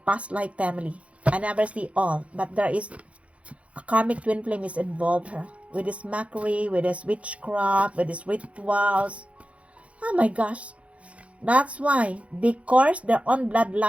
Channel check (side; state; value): left; late; 0.063 ms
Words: life family. I never see all. But there is a karmic twin flame is involved here. With this mockery, with this witchcraft, with these rituals. Oh my gosh. That's why they curse their own